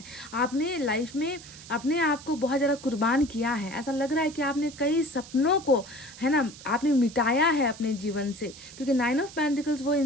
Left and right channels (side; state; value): right; noise; hiss, 17 dB below the sound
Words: आपने लाइफ में अपने आप को बहुत ज़्यादा कुर्बान किया है। ऐसा लग रहा है कि आपने कई सपनों को, है ना, आपने मिटाया है अपने जीवन से। क्योंकि 9 ऑफ पेंटिकल्स वो